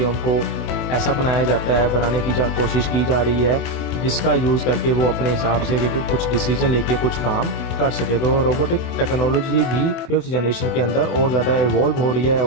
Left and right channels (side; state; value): right; late; 24 ms